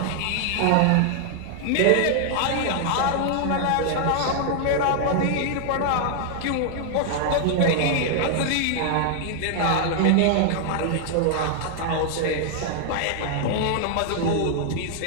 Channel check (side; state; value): both; different; correlation 0.00